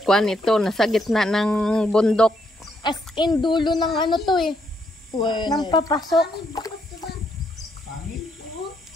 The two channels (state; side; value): normal; both; correlation 0.75